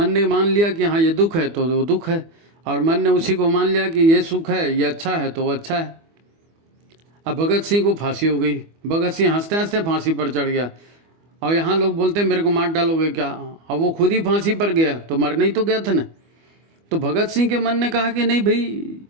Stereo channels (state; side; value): late; left; 25 ms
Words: ने मान लिया कि हाँ ये दुख है तो वो दुख है, और मन ने उसी को मान लिया कि ये सुख है, ये अच्छा है तो वो अच्छा है। अब भगत सिंह को फांसी हो गई, भगत सिंह हंसते हंसते फांसी पर चढ़ गया, और यहाँ लोग बोलते हैं मेरे को मार डालोगे क्या, अब वो खुद ही फांसी पर गया तो मरने ही तो गया था ना। तो भगत सिंह के मन ने कहा कि नहीं भाई